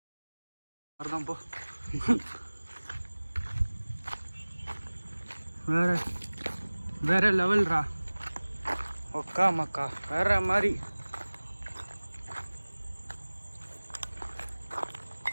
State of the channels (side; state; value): both; inverted; correlation -1.00